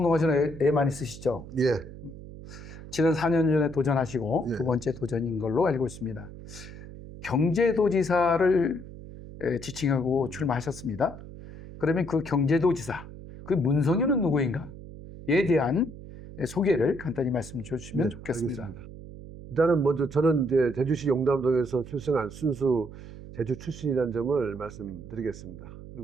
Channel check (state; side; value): noise; right; hum, 14 dB below the sound